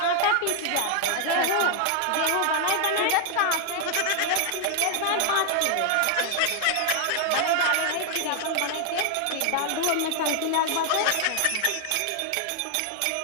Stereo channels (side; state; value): both; different; correlation 0.00